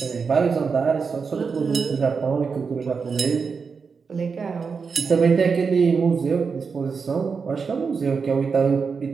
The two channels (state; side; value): quieter; left; 5.4 dB